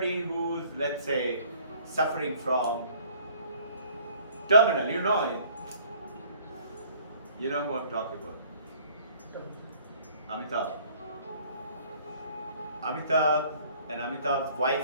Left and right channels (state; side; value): inverted; both; correlation -0.56